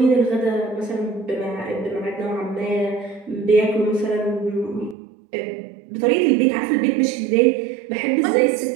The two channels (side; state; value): left; drops out; at 5.0 s